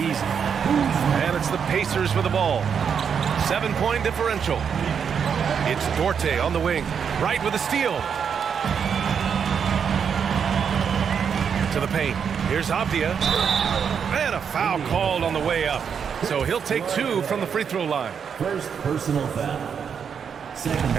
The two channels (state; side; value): quieter; left; 7.1 dB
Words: And it's the Pacers with the ball. 7-point differential. It's Dorte on the wing. Right with a steal. To the paint. Here's Avdia. And a foul called on the way up. So he'll take 2 from the free throw line. First personal foul. Second.